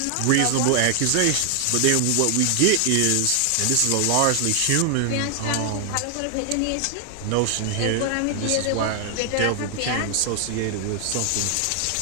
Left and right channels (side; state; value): both; different; correlation 0.00